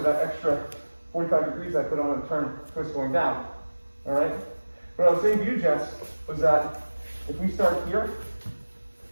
that extra 45 degrees I put on a turn twist going down. All right? What I was saying to you, Jess, was that if we start here,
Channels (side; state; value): both; inverted; correlation -1.00